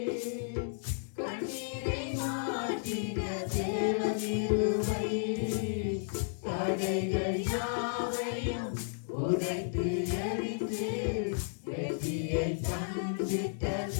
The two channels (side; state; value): right; silent; 56 dB below the other